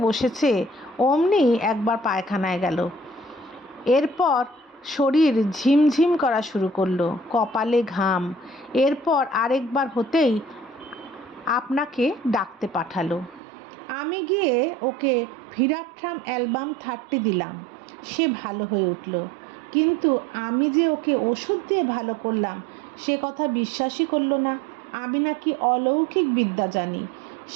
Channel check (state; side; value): drops out; left; at 13.4 s